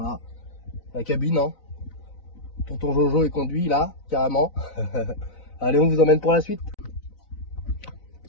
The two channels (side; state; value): right; late; 4.0 ms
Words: la cabine, hein. Tonton Jojo est conduit là, carrément. Allez, on vous emmène pour la suite.